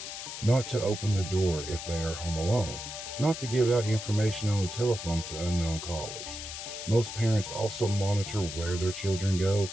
not to open the door if they are home alone, not to give out information on the telephone to unknown callers. Most parents also monitor where their children go,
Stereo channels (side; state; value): left; noise; hiss, 8 dB below the sound